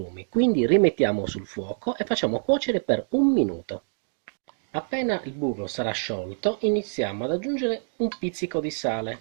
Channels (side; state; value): left; silent; digital silence